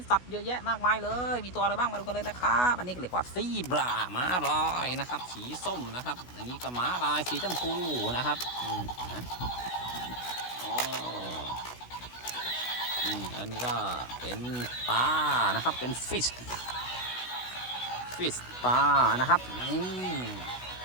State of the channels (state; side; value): late; right; 16 ms